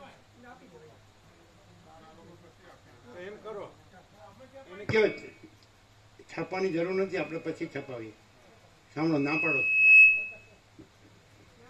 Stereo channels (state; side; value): identical; both; correlation 1.00